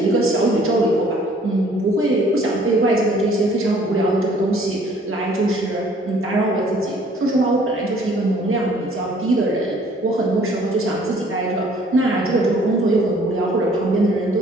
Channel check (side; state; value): both; normal; correlation 0.57